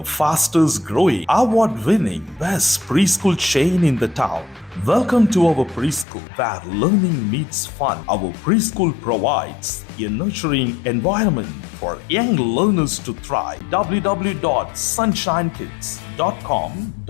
fastest growing, award-winning, best preschool chain in the town. Welcome to our preschool, where learning meets fun. Our preschool provides a nurturing environment for young learners to thrive.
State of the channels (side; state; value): right; drops out; at 6.1 s